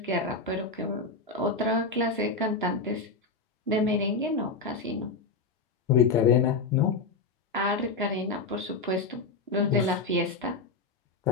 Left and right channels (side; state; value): right; quieter; 3.9 dB